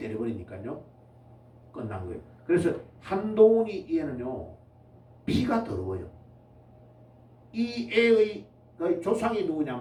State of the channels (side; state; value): both; identical; correlation 1.00